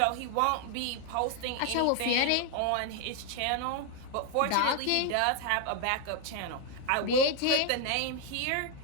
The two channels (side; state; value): both; different; correlation 0.01